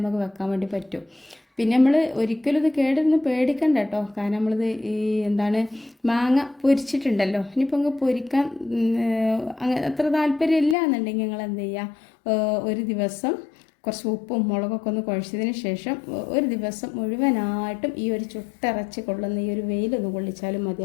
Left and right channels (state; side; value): drops out; right; at 10.8 s